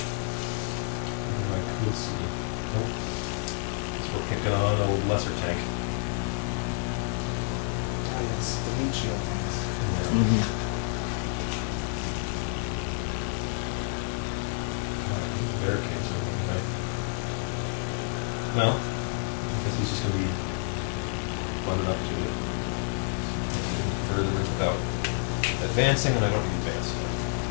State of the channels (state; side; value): silent; right; 59 dB below the other